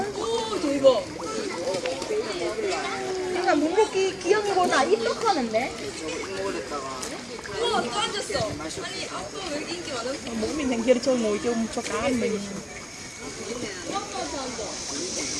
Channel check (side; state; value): both; identical; correlation 1.00